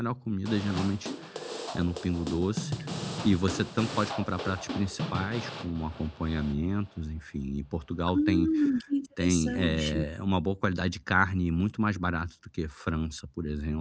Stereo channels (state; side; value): identical; both; correlation 1.00